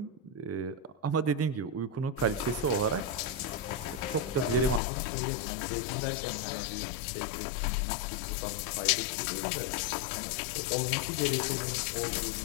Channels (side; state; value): right; drops out; at 4.8 s